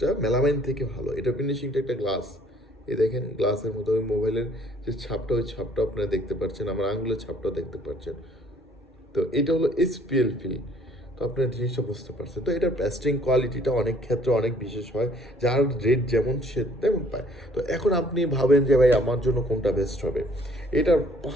মেলামাইন থেকে ভালো। এটা ফিনিশিংটা একটা গ্লাস, এই দেখেন গ্লাসের মতো। ওই মোবাইলের যে ছাপটা, ওই ছাপটা আপনারা দেখতে পাচ্ছেন, আমার আঙুলের ছাপটাও দেখতে পাচ্ছেন। তো এটা হলো এসপিএল ফিল। তো আপনার জিনিসটা বুঝতে পারছেন। তো এটার প্যাস্টিং কোয়ালিটিটা অনেক ক্ষেত্রে অনেক বিশেষ হয়, যার রেট যেমন সে তেমন পায়। তো এখন আপনি ভাবেন যে ভাই আমার জন্য কোনটা বেস্ট হবে, এটার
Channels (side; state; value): both; normal; correlation 0.60